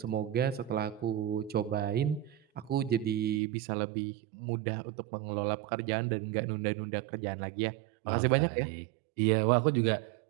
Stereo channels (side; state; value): left; drops out; at 3.4 s